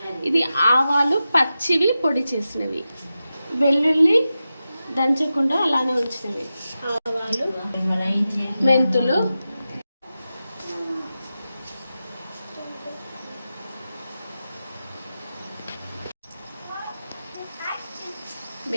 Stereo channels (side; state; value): both; inverted; correlation -0.92